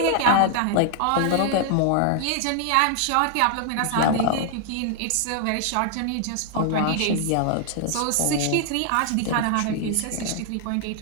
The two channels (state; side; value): different; both; correlation 0.00